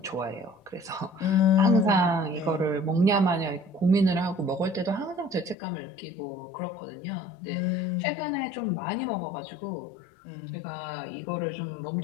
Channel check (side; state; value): right; drops out; at 5.6 s